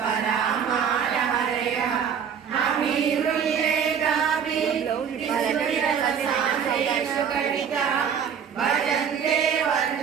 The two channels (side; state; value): left; quieter; 7.6 dB